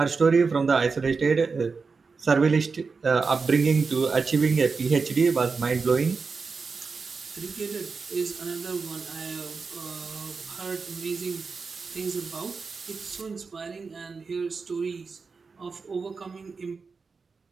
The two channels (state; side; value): quieter; left; 4.7 dB